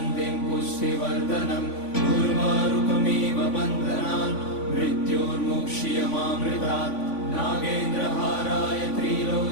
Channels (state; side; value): late; right; 3.5 ms